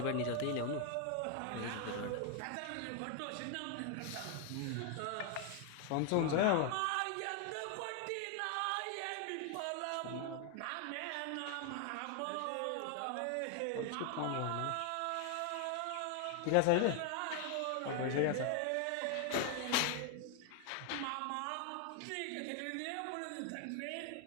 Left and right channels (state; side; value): different; both; correlation 0.00